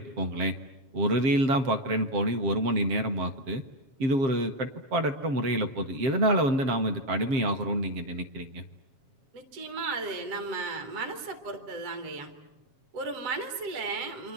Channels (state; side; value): late; left; 7.4 ms